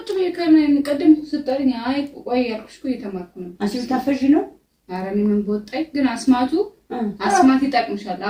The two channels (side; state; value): both; identical; correlation 1.00